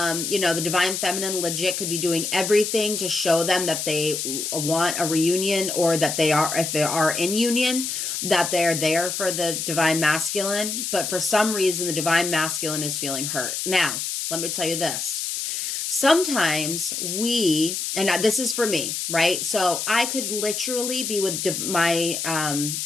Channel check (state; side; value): noise; left; hiss, 3 dB below the sound